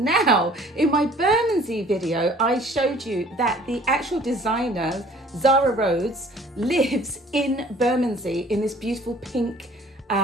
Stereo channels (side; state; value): both; normal; correlation 0.53